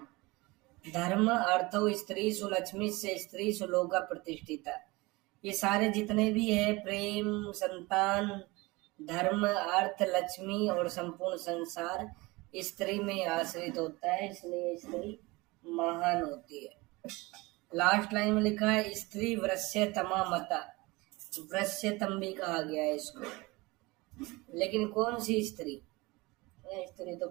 धर्म अर्थो स्त्री सुलक्ष्मी से स्त्री सुलोका प्रतिष्ठिता। ये सारे जितने भी है, प्रेम, संतान, धर्म, अर्थ, लक्ष्मी और संपूर्ण संसार स्त्री में आश्रित होता है, इसलिए स्त्री महान होती है। लास्ट लाइन में लिखा है स्त्री वृश्यतमा मता। वृश्यतम भी कहा गया है इसको, लेकिन कौन सी स्त्री? स्त्री तो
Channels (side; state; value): left; quieter; 23.1 dB